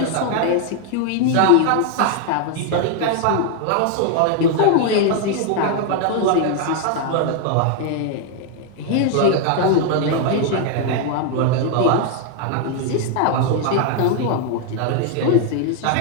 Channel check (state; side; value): different; both; correlation 0.00